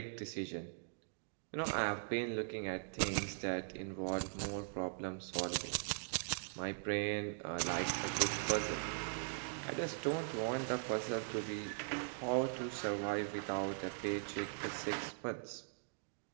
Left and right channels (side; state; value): left; silent; digital silence